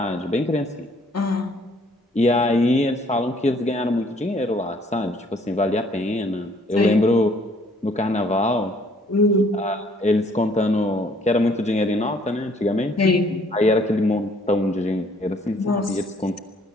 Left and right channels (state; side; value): normal; both; correlation 0.62